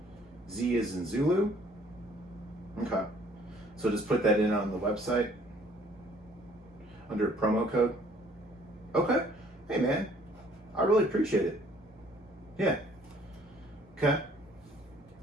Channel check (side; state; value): both; normal; correlation 0.59